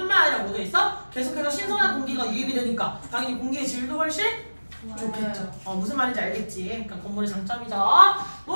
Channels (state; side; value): inverted; both; correlation -1.00